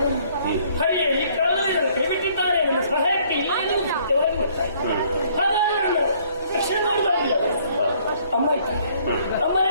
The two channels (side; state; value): both; inverted; correlation -0.62